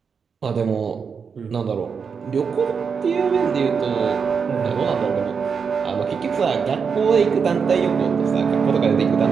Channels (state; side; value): quieter; left; 6.0 dB